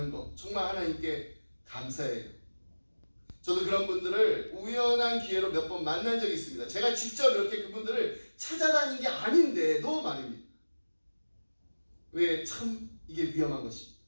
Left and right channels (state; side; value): inverted; both; correlation -1.00